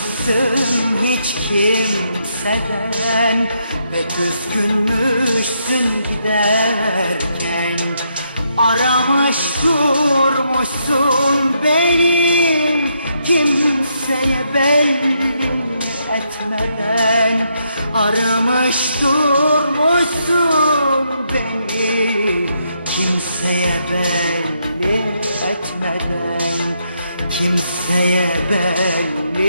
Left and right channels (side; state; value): both; inverted; correlation -0.77